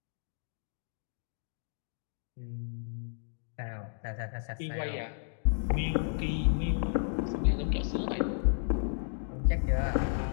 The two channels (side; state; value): right; silent; digital silence